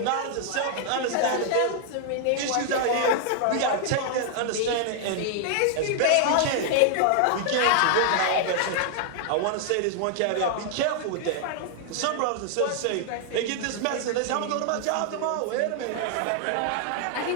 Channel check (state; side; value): different; both; correlation 0.00